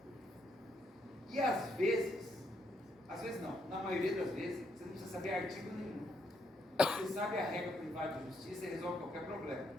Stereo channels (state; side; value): normal; both; correlation 0.76